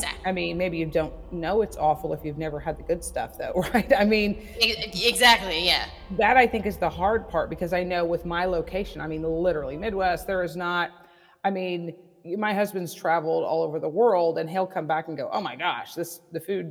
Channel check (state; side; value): identical; both; correlation 1.00